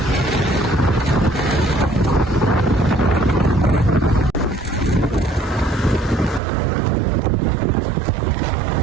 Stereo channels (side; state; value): left; drops out; at 6.4 s